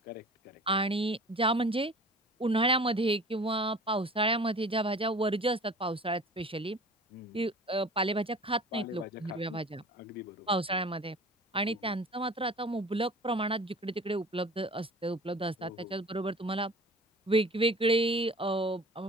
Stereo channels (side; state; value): both; normal; correlation 0.43